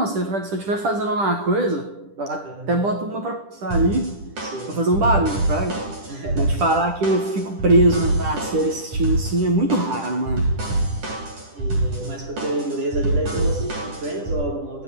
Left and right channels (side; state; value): left; late; 10 ms